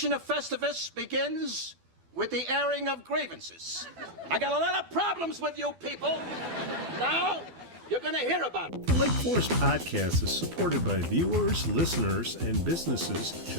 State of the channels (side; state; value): left; late; 12 ms